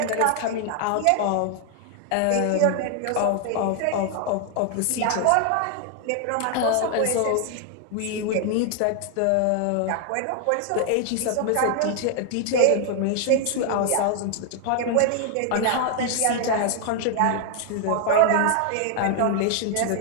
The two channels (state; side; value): different; both; correlation 0.00